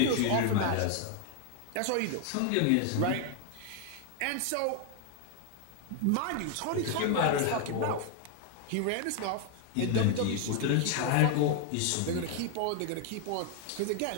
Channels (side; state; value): both; different; correlation 0.00